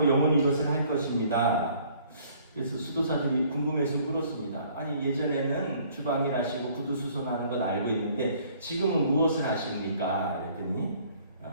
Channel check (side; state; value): both; inverted; correlation -0.58